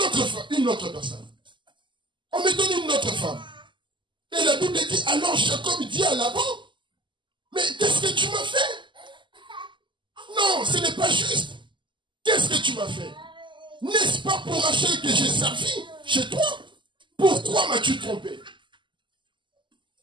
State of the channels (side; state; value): left; late; 0.24 ms